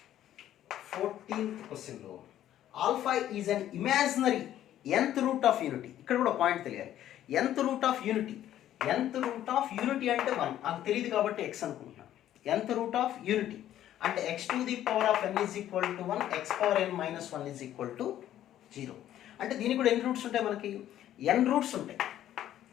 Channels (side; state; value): right; quieter; 12.0 dB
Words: 14th క్వశ్చన్లో alpha is an imaginary nth root of unity. ఇక్కడ కూడా పాయింట్ తెలియాలి, nth root of unity. nth root of unity అంటే 1, నాకు తెలియదు కాబట్టి x అనుకుంటున్నాను. nth రూట్ ఆఫ్ యూనిటీ అంటే x to the power of n is equal to 1, x power n minus 1 is equal to 0. అంటే దీనికి కూడా ఎన్ని రూట్స్ ఉంటాయి మనకి, n రూట్స్ ఉంటాయి.